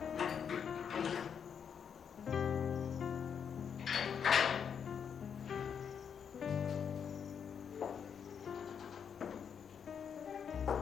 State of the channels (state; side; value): quieter; right; 7.3 dB